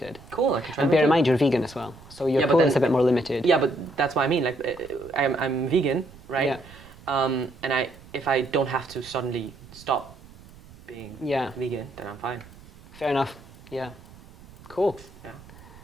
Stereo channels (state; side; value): noise; right; rumble, 21 dB below the sound